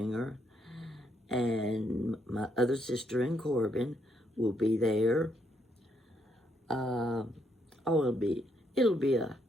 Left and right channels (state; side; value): normal; both; correlation 0.75